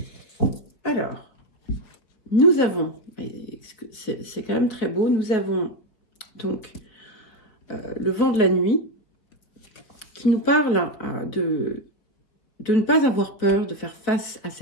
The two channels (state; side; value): late; right; 4.7 ms